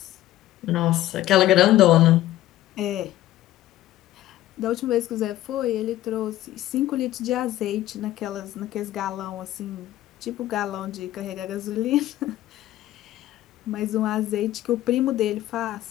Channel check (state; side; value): quieter; right; 14.4 dB